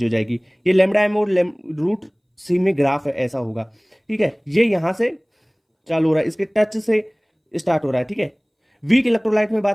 हो जाएगी। ये लेमडा एम और रूट सी में ग्राफ है ऐसा होगा, ठीक है। ये यहां से चालू हो रहा है, इसके टच से स्टार्ट हो रहा है, ठीक है। वीक इलेक्ट्रोलाइट में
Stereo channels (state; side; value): identical; both; correlation 1.00